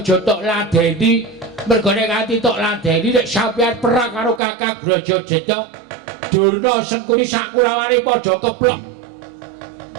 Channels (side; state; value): left; drops out; at 4.4 s